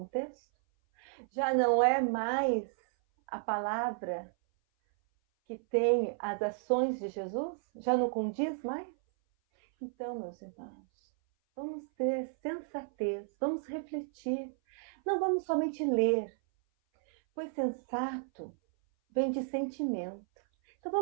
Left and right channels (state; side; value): silent; left; 56 dB below the other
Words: já não é mais a palavra que tem as ações de Jesus? Já não condiz mais? Então, meus irmãos, vamos ter sensatez, vamos refletir. Não vamos somente ler, pois sensato vem de sentimento. Então